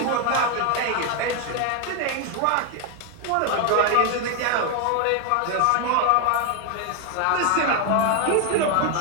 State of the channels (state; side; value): different; both; correlation 0.01